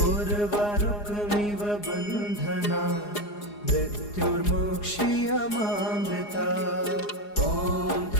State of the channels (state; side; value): late; right; 4.8 ms